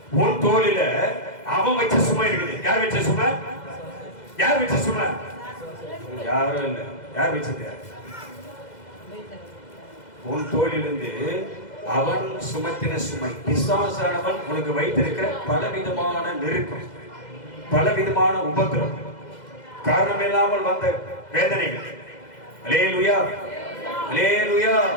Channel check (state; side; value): late; right; 2.0 ms